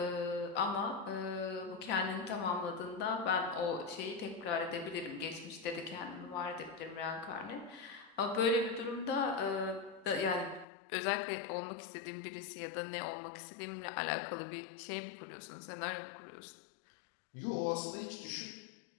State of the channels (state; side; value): drops out; right; at 10.7 s